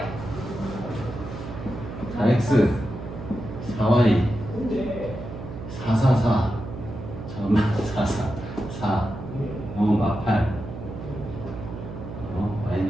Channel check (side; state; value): right; noise; hum, 9 dB below the sound